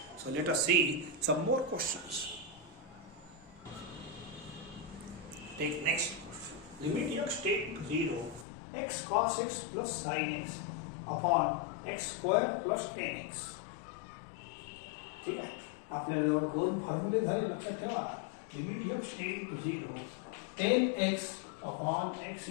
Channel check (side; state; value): right; drops out; at 8.5 s